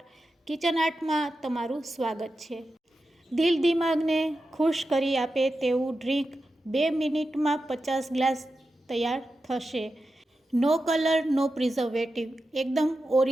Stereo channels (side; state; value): both; normal; correlation 0.91